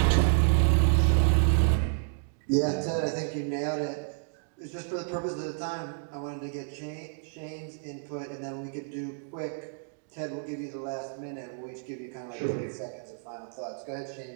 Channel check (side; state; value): left; silent; digital silence